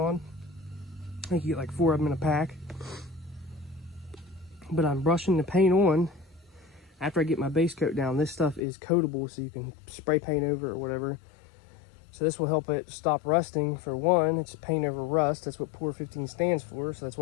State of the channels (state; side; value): drops out; right; at 8.6 s